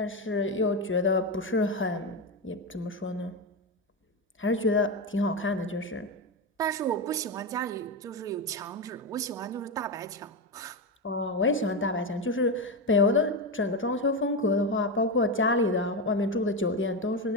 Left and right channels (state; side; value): normal; both; correlation 0.13